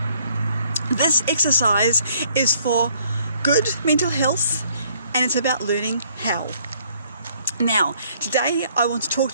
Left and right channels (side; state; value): both; inverted; correlation -0.64